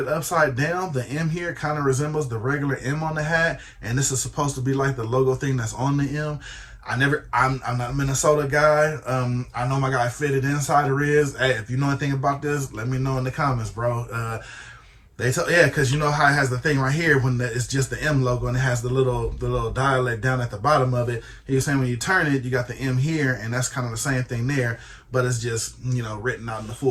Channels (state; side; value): identical; both; correlation 1.00